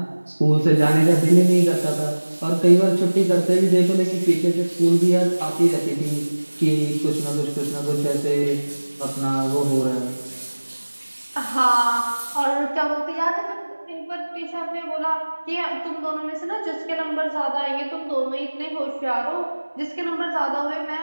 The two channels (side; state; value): both; inverted; correlation -1.00